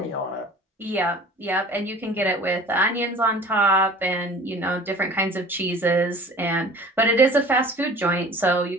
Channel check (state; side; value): normal; both; correlation 0.45